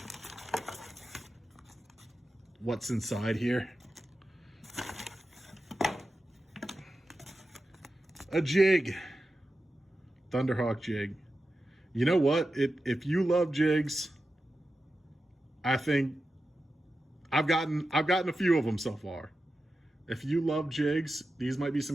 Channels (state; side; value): normal; both; correlation 0.91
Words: What's inside here? A jig. Thunderhawk jig. You know what? If you love jigs, I think I've gotten a few of them so far. If you love jigs, these might be